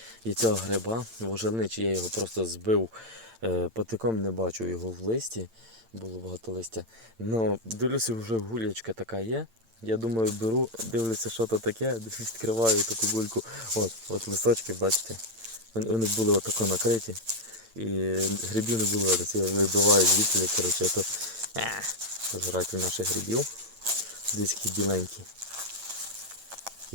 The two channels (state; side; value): late; left; 8.9 ms